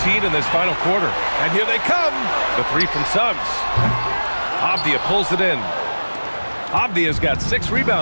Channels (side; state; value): both; inverted; correlation -1.00